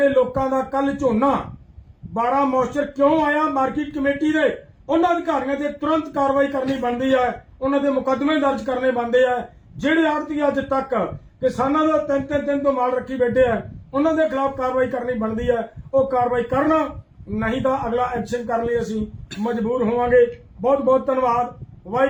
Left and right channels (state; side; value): identical; both; correlation 1.00